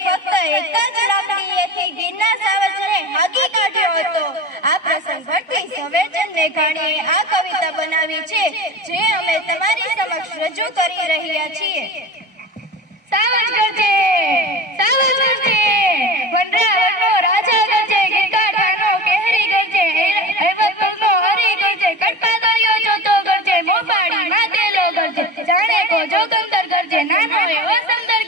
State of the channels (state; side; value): normal; both; correlation 0.31